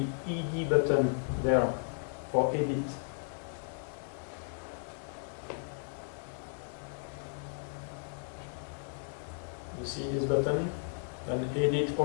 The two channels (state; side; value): silent; right; 55 dB below the other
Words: ED button there for edit. You see this button? Then edit